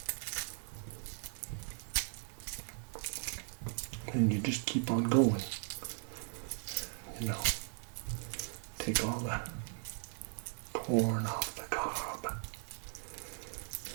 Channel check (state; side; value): silent; left; 52 dB below the other